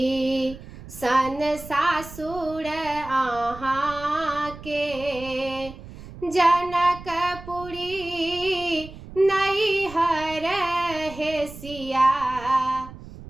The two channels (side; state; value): right; noise; rumble, 15 dB below the sound